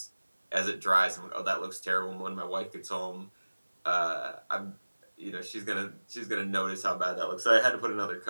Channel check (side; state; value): both; inverted; correlation -1.00